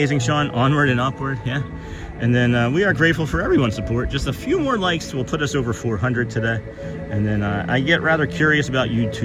Sean. Onward and upward, yeah. And then we are grateful for everyone's support. Just a few more likes will put us over 400 today. And then I get rather curious about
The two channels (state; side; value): identical; both; correlation 1.00